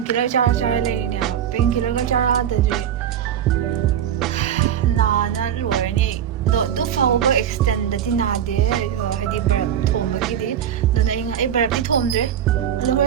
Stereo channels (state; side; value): quieter; left; 9.6 dB